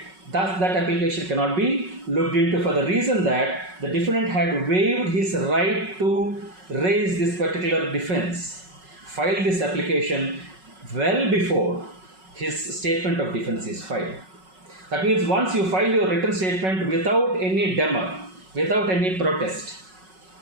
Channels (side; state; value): left; late; 5.4 ms